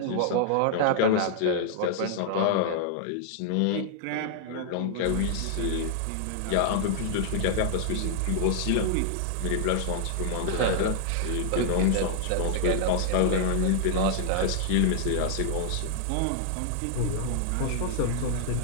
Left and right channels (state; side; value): different; both; correlation -0.01